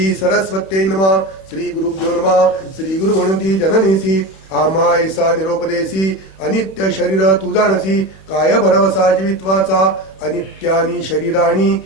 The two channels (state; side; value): late; right; 31 ms